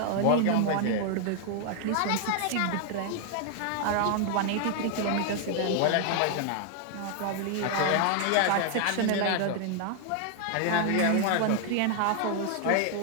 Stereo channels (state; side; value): different; both; correlation 0.00